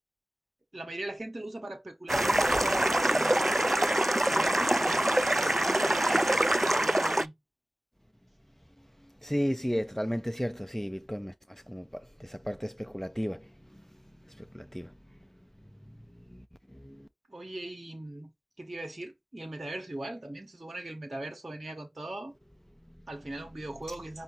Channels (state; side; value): normal; both; correlation 0.96